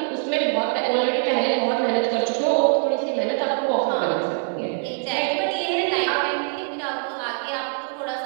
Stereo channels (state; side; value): quieter; left; 35.9 dB